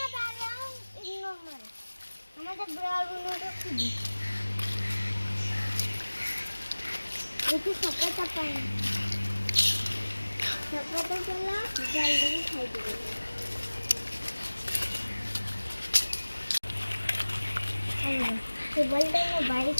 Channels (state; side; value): inverted; both; correlation -1.00